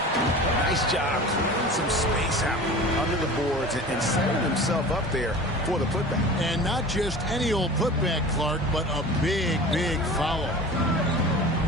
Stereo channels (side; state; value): both; normal; correlation 0.38